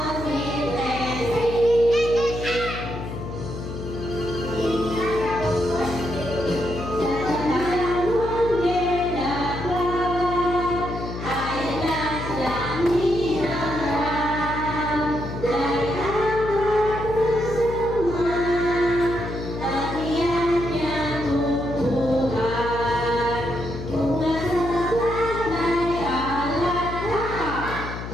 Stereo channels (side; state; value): left; noise; hum, 8 dB below the sound